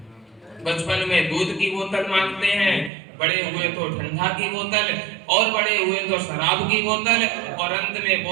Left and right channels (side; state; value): left; drops out; at 2.9 s